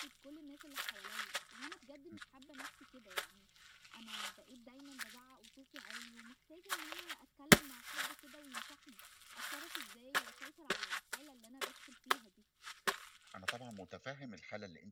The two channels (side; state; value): both; identical; correlation 1.00